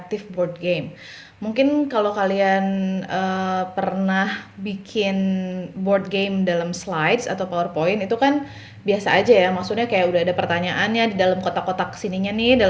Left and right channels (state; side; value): identical; both; correlation 1.00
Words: board game. Mungkin kalau kalian pernah bikin board game dalam slides atau PowerPoint itu kan biasa aja ya, maksudnya kayak udah ada pertanyaannya di dalam kotak-kotak sininya nih,